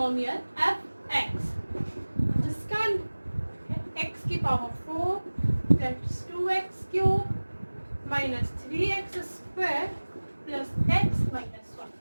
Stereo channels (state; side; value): inverted; both; correlation -1.00